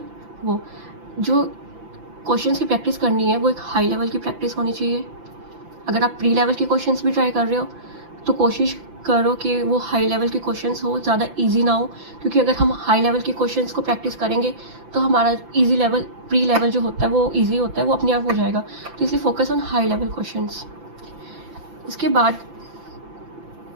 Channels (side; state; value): left; late; 5.9 ms